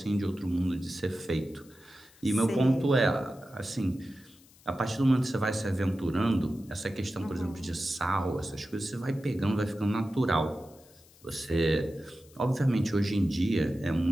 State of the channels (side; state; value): left; noise; hiss, 27 dB below the sound